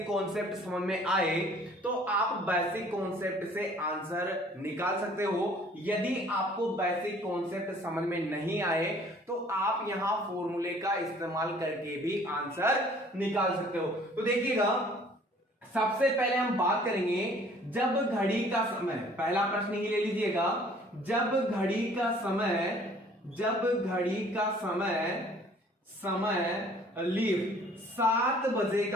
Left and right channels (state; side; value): normal; both; correlation 0.55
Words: कॉन्सेप्ट समझ में आए तो आप बेसिक कॉन्सेप्ट से आंसर निकाल सकते हो। यदि आपको बेसिक कॉन्सेप्ट समझ में नहीं आए तो आप यहां फॉर्मूले का इस्तेमाल करके भी आंसर निकाल सकते हो। तो देखिएगा, सबसे पहले हम बात करेंगे जब घड़ी का समय। पहला प्रश्न ही ले लीजिएगा। जब घड़ी का समय लीव 7 बजे